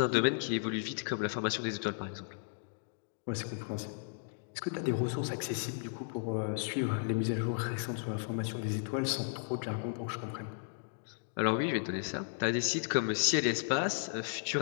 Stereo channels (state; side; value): silent; right; digital silence